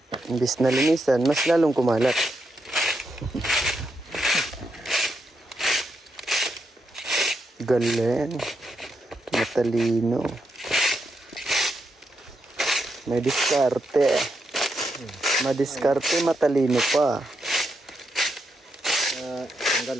Imbis na linisan, mas lalong kumalat. Galing. Matalino. May diskarte. Madiskarte, matalino pa. Tanggal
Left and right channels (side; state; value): both; normal; correlation 0.82